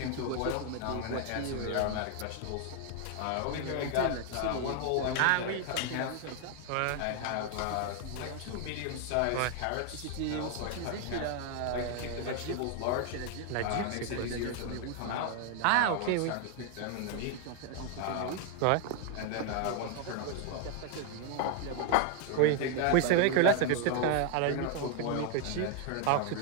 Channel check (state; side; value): different; both; correlation 0.00